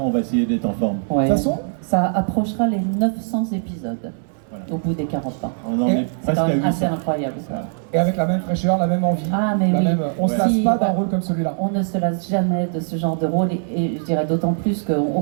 on va essayer d'être en forme. Ouais. De toute façon, ça approchera les 900 épisodes au bout des 40 ans. On en est C'est presque quand à même 800. assez incroyable ça. Voilà. et avec la même fraîcheur, la même envie, Ah mais oui. on se lasse Si, pas d'un rôle comme celui-là. On ne se lasse jamais de ce genre de rôle et je dirais d'autant plus qu'on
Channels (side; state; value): left; silent; digital silence